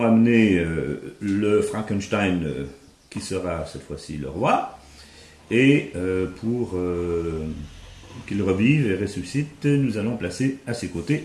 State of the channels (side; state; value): both; identical; correlation 1.00